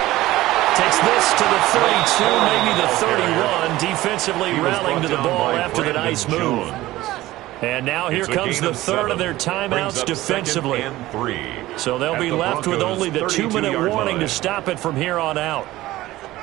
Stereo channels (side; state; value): left; quieter; 16.8 dB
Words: Takes this to the 32, maybe the 31. Defensively rallying to the ball after the nice move. And now here comes the 3rd of their timeouts defensively. So they'll be left with only the 2-minute warning to stop it from here on out.